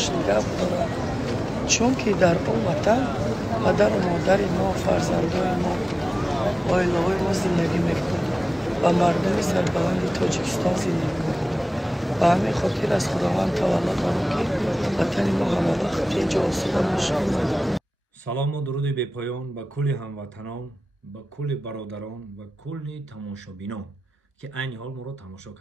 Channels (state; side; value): normal; both; correlation 0.97